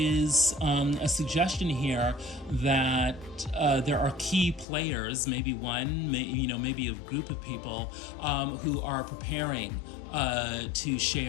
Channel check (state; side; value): drops out; right; at 4.7 s